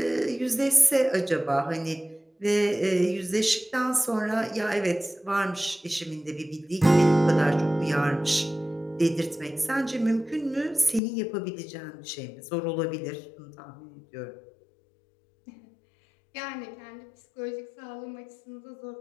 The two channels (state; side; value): drops out; right; at 11.0 s